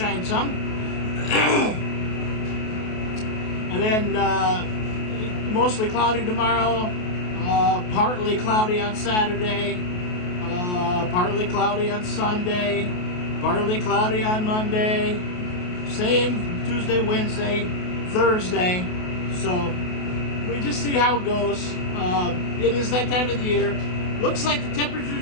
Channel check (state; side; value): late; right; 28 ms